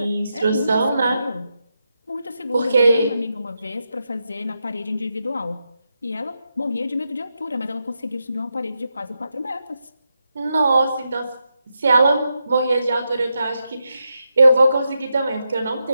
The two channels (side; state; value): both; inverted; correlation -0.86